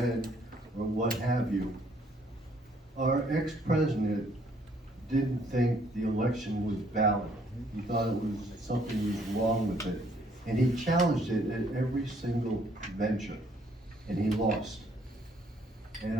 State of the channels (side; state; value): both; normal; correlation 0.65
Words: or what have you, our ex-president didn't think the election was valid. He thought it was something was wrong with it. And he challenged it at every single venture, and he lost.